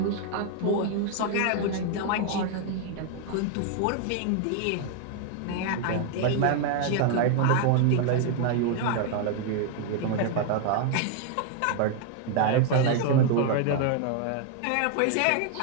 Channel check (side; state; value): both; different; correlation 0.00